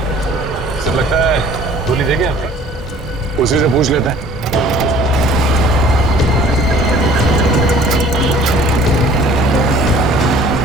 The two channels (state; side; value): normal; both; correlation 0.52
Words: गोली देंगे आपका? उसी से पूछ लेते हैं।